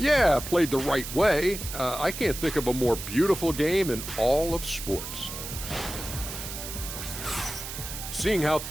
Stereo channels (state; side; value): noise; right; hiss, 8 dB below the sound